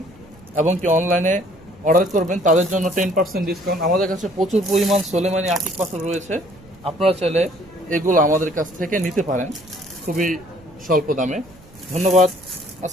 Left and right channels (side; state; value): right; noise; rumble, 24 dB below the sound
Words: এবং কি অনলাইনে অর্ডার করবেন, তাদের জন্য 10% ডিসকাউন্ট। আমাদের কাছে প্রচুর পরিমাণ সোলেমানি আকিক পাথর রয়েছে। আপনারা চাইলে এগুলো আমাদের কাছ থেকে নিতে পারেন খুবই স্বল্প দামে। ধন্যবাদ।